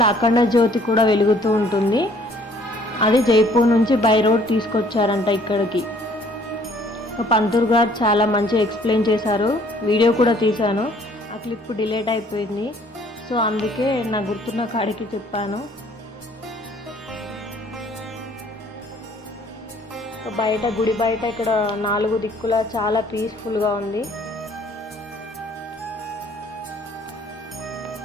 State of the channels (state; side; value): normal; both; correlation 0.59